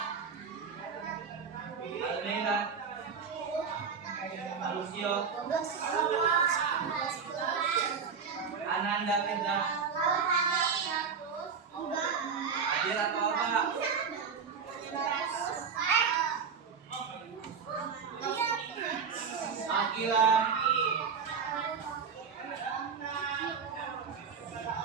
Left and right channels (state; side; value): quieter; left; 6.1 dB